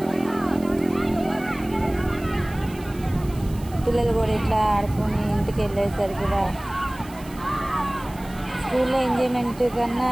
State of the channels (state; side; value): noise; right; hiss, 21 dB below the sound